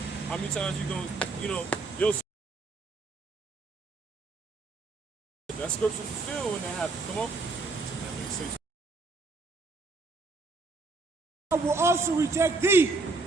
How many times you gonna, you know, you'll see that scripture fulfilled when that happens. Come on. That makes sense. I will also reject thee,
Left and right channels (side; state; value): left; quieter; 3.6 dB